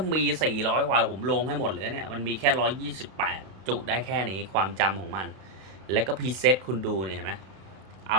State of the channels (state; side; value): late; left; 32 ms